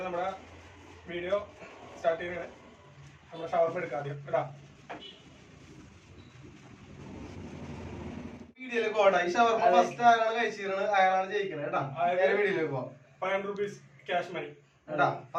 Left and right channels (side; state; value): both; identical; correlation 1.00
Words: നമ്മുടെ വീഡിയോ സ്റ്റാർട്ട് ചെയ്യണേ. നമ്മുടെ ഷവർമ എടുക്കാം ആദ്യം കേട്ടാ. വീഡിയോയിലേക്ക് പോകട്ടെ. ഈ ഷവർമ ഫസ്റ്റ് ആരാണ് കഴിച്ചിരുന്നത് അയാളാണ് ജയിക്കുന്നത് കേട്ടാ. വീഡിയോയിലേക്ക് പോവാം. 500 rupees ക്യാഷ് മണി കേട്ടാ.